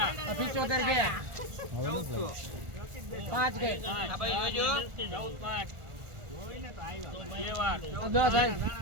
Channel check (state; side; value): late; left; 1.4 ms